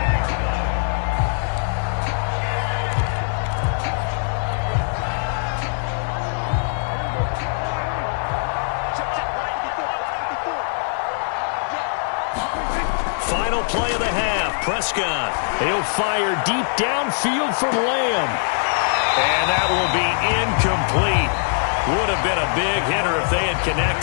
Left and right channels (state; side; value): silent; right; digital silence